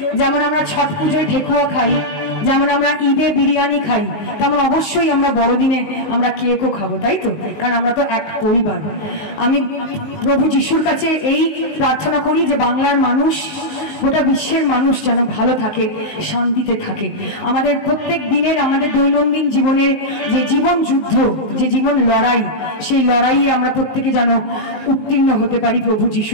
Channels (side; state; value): right; late; 19 ms